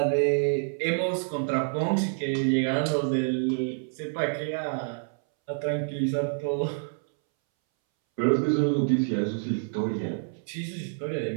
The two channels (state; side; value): silent; left; 60 dB below the other